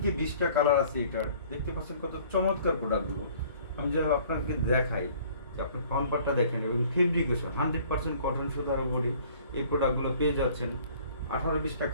20টা কালার আছে এটার। দেখতে পাচ্ছেন কত চমৎকার প্রোডাক্টগুলো। আমি যদি আপনাকে দেখাই, যে আপনি ফ্রন্ট পার্টটা দেখেন এবং ফেব্রিকেশন 100% কটন সুতার উপরে এই প্রোডাক্টগুলো পেয়ে যাচ্ছেন। 18-20টা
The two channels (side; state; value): both; inverted; correlation -0.54